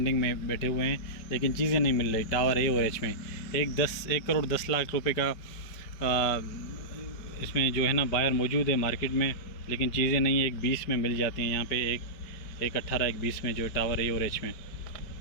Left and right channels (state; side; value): late; right; 5.2 ms